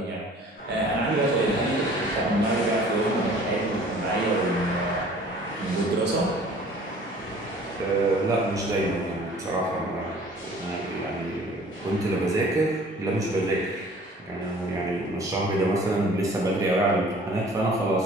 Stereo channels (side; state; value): both; normal; correlation 0.50